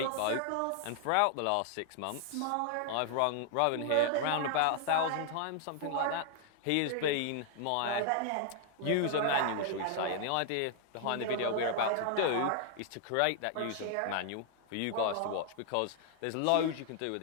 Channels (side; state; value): both; different; correlation 0.00